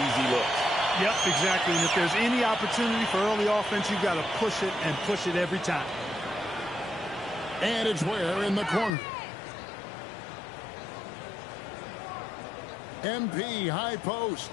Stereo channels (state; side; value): drops out; right; at 8.9 s